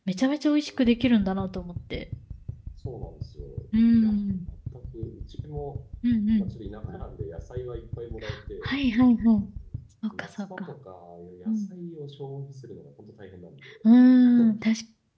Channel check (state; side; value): identical; both; correlation 1.00